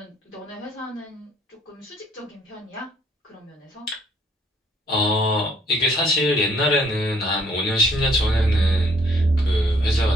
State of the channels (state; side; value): normal; both; correlation 0.64